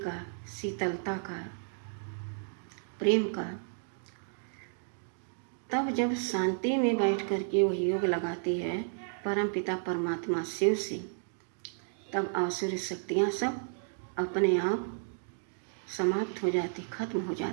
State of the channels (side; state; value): left; silent; digital silence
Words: शीतलता का, प्रेम का। तब जब शांति में बैठ कर के वह योग लगाती है परमपिता परमात्मा शिव से, तब आसुरी शक्तियाँ सब अपने आप समाप्त हो जाती, खत्म हो